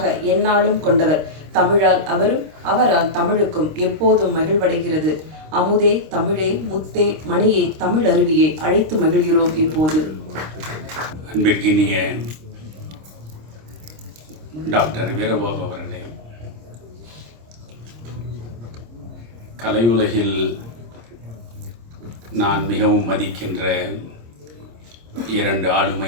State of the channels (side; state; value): left; late; 26 ms